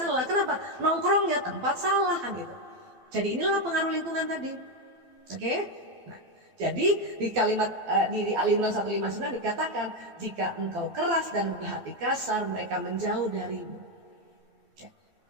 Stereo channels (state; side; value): late; left; 12 ms